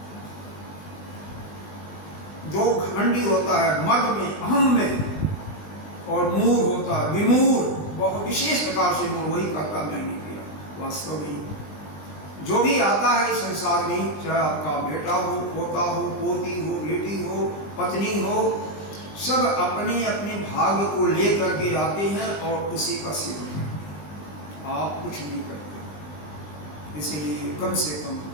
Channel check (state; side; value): late; right; 20 ms